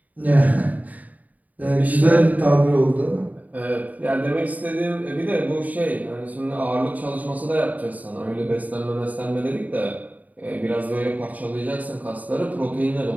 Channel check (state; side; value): late; left; 0.075 ms